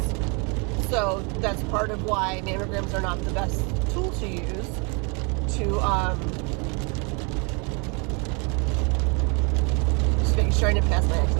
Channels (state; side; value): quieter; left; 33.2 dB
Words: so that's part of why mammograms are not the best tool to use to just making sure I didn't pass my